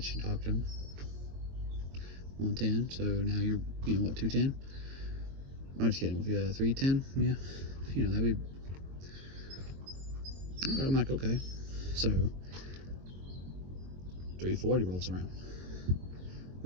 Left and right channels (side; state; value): left; late; 22 ms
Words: you, talked to him. 1:10, so now you're, what, 2:10? I'm just kidding, if you 3:10, yeah, that'd be, I'm like, okay. So 3:40 rolls around.